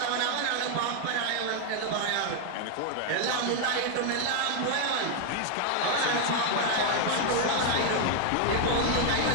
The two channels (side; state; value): both; different; correlation 0.00